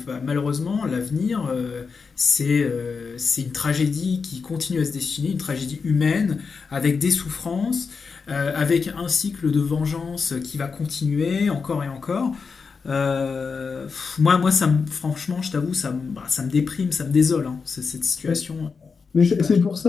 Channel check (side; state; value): right; quieter; 5.2 dB